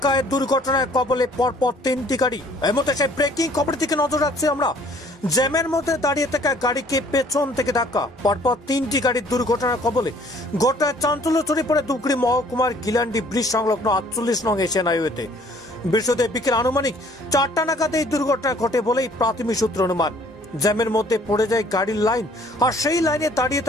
দুর্ঘটনায় কবলে পরপর তিনটি গাড়ি। এর মধ্যে সেই ব্রেকিং খবরের দিকে নজর রাখছি আমরা। জ্যামের মধ্যে দাঁড়িয়ে থাকা গাড়িকে পেছন থেকে ধাক্কা, পরপর তিনটি গাড়ির দুর্ঘটনার কবলে। ঘটনায় চাঞ্চল্য ছড়িয়ে পড়ে ধূপগুড়ি মহকুমার গিলান্ডি ব্রিজ সংলগ্ন 48 নং এশিয়ান হাইওয়েতে। বৃহস্পতিবার বিকেল আনুমানিক 4টা নাগাদ এই দুর্ঘটনা ঘটে বলেই প্রাথমিক সূত্র অনুমান। জ্যামের মধ্যে পড়ে যায় গাড়ির লাইন, আর সেই লাইনে দাঁড়িয়ে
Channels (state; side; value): normal; both; correlation 0.57